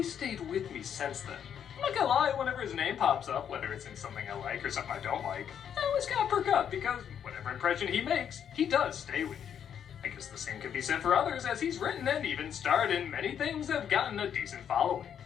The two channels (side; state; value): right; quieter; 8.6 dB